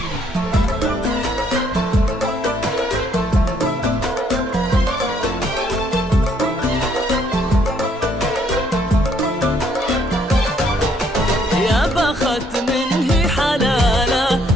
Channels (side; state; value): both; normal; correlation 0.68